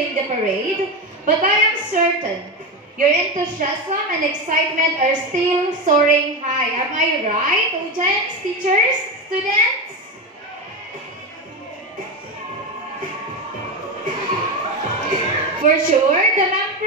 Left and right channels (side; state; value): both; normal; correlation 0.16